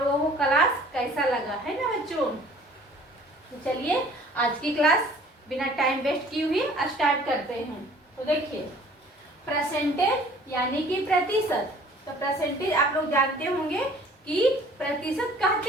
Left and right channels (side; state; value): both; normal; correlation 0.51